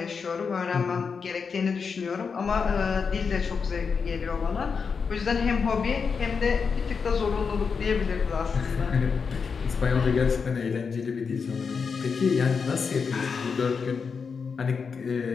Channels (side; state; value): right; quieter; 5.6 dB